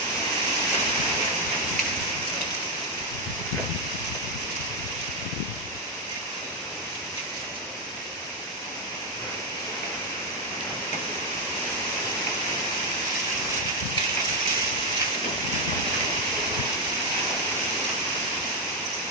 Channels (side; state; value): both; normal; correlation 0.04